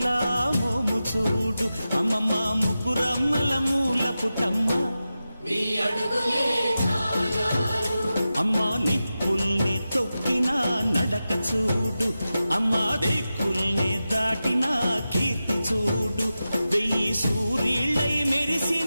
మోము చూడు, అమ్మమ్మ ముగ్గురమ్మల మూల పుటమ్మ అమ్మా నిప్పుల్ని తొక్కిన నడక చూడు, అమ్మా దిక్కుల్ని దాటిన కీర్తి చూడు, 1000 సూర్యుళ్ళై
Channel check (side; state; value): both; inverted; correlation -0.93